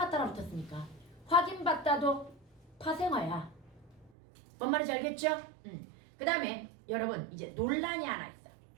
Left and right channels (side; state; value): left; drops out; at 4.1 s